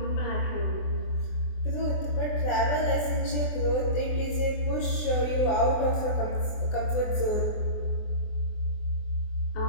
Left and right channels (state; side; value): late; right; 24 ms